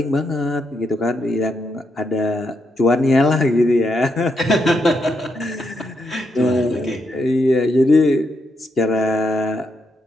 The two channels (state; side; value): normal; both; correlation 0.80